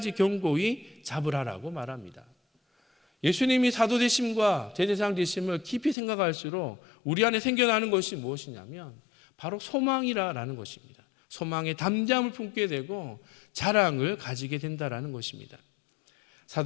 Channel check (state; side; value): drops out; right; at 6.0 s